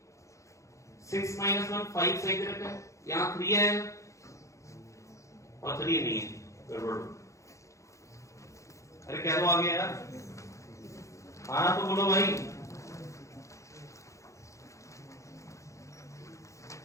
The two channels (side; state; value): right; late; 0.15 ms